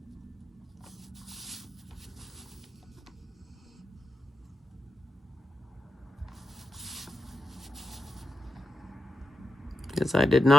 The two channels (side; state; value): both; normal; correlation 0.88